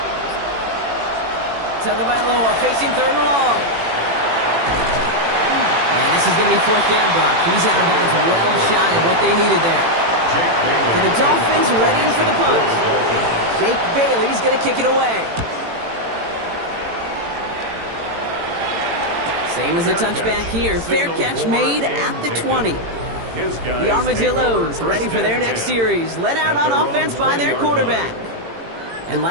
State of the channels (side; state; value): left; late; 18 ms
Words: Tagovailoa facing 3rd and long. And this is going to be 4th down, Brock. He's out of bounds, well shy of what they needed there. So the Dolphins ready for the punt. Jake Bailey's going to kick it away. Same as a touchback here. Fair catch made at the 20. The Armadillos ready for their next series. Led out on offense by their quarterback. And